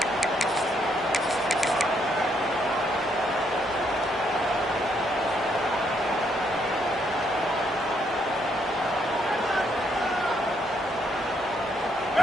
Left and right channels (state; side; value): normal; both; correlation 0.73